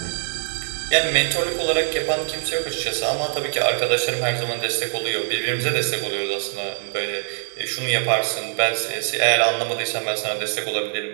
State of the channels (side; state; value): left; silent; 63 dB below the other